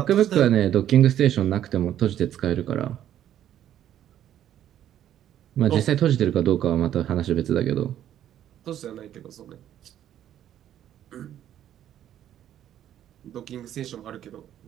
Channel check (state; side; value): quieter; left; 11.1 dB